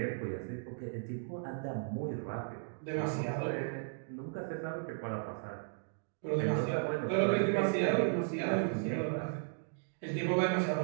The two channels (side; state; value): left; silent; digital silence